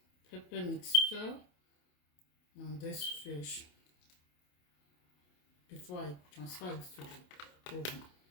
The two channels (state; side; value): late; right; 28 ms